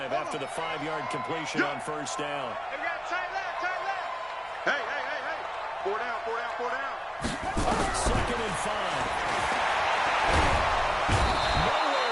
after the 5-yard completion on first down. Hey. 4 down. Second and 5.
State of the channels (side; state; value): both; identical; correlation 1.00